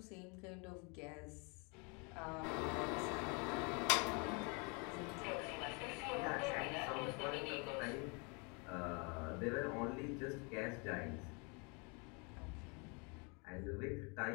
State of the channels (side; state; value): right; quieter; 32.5 dB